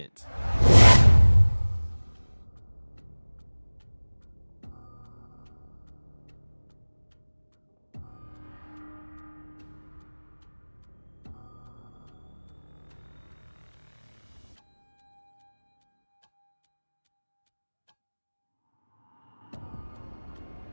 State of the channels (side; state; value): both; inverted; correlation -1.00